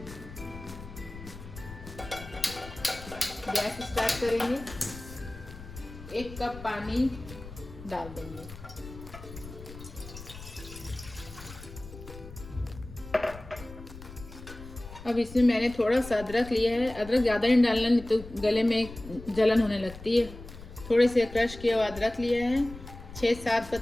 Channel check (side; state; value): left; noise; rumble, 14 dB below the sound